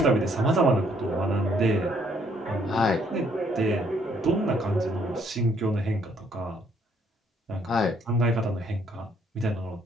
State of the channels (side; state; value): both; normal; correlation 0.67